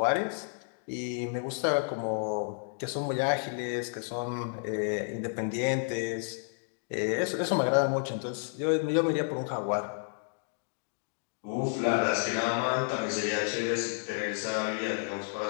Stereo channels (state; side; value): silent; right; 57 dB below the other